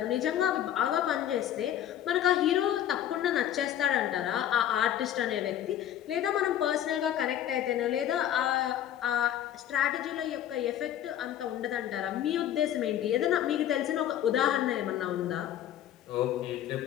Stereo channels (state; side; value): quieter; right; 11.1 dB